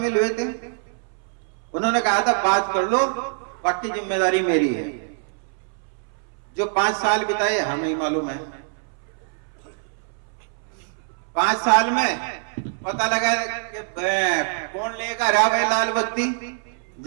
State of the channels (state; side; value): silent; left; 63 dB below the other